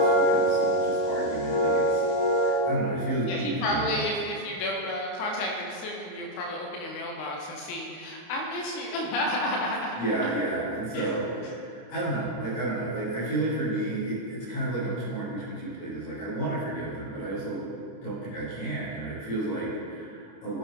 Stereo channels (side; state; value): right; late; 30 ms